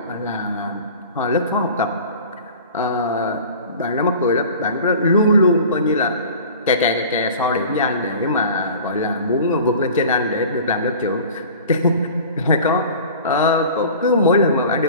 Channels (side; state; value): both; inverted; correlation -0.42